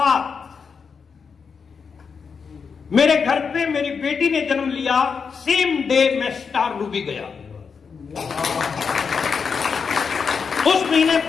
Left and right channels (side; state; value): right; quieter; 5.8 dB